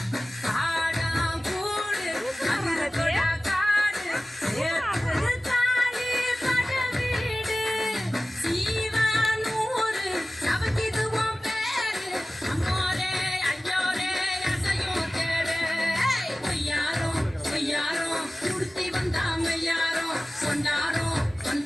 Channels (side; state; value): both; normal; correlation 0.97